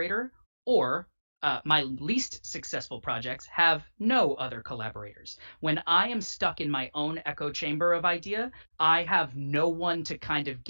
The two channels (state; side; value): inverted; both; correlation -1.00